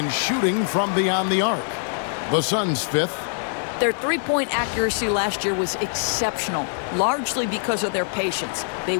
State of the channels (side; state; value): right; silent; 61 dB below the other